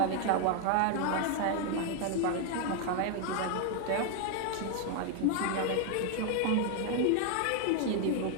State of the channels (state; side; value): different; both; correlation 0.01